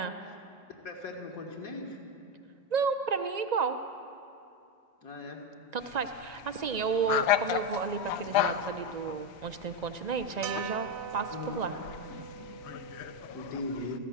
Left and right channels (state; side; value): late; left; 1.9 ms